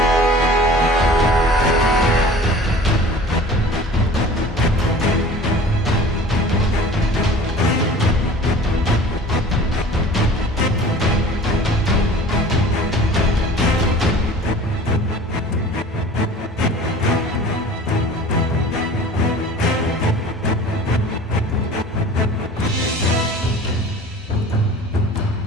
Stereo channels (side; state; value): both; normal; correlation 0.43